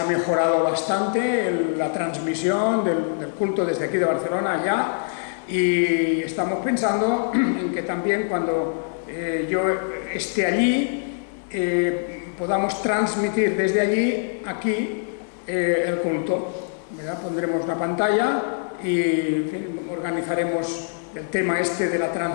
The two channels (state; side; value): silent; right; digital silence